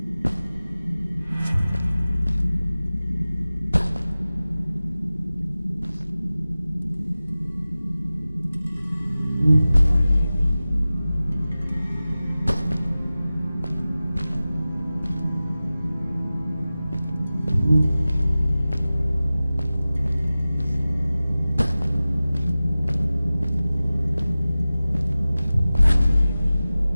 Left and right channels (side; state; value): both; inverted; correlation -0.96